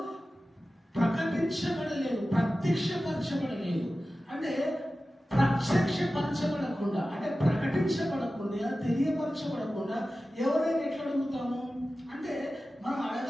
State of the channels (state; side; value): normal; both; correlation 0.95